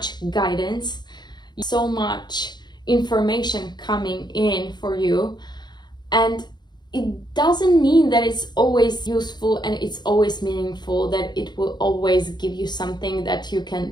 guidance, so much information coming in for you. And it doesn't mean that it's always useful and it's always meaningful, that it will always give you something that you can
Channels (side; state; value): right; late; 0.21 ms